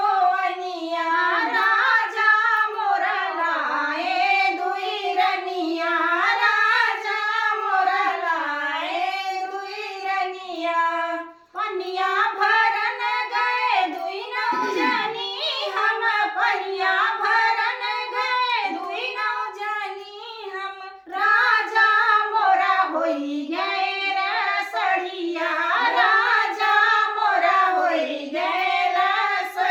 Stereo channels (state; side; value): identical; both; correlation 1.00